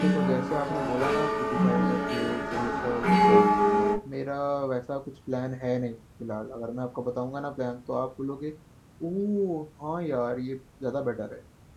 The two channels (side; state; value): both; identical; correlation 1.00